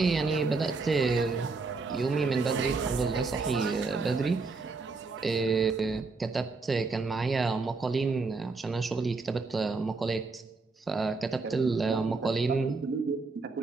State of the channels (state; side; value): quieter; left; 4.0 dB